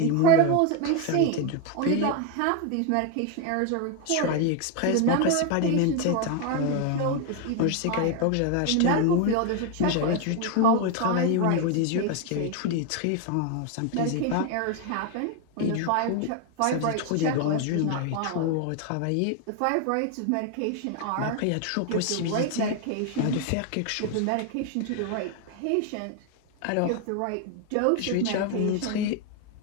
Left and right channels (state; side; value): different; both; correlation 0.01